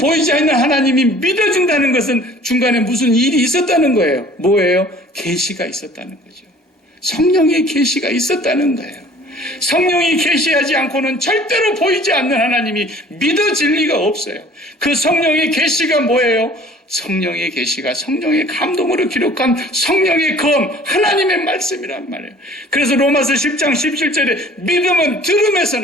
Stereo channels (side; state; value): both; normal; correlation 0.50